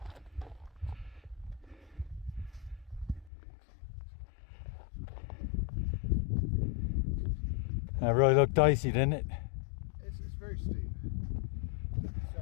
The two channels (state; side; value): drops out; right; at 3.3 s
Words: That really looked dicey, didn't it? It's very steep.